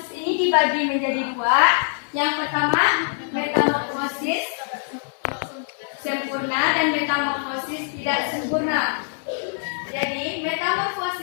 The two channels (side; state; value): right; silent; digital silence